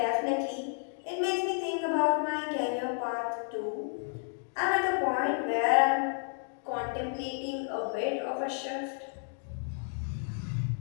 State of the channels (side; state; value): right; silent; 57 dB below the other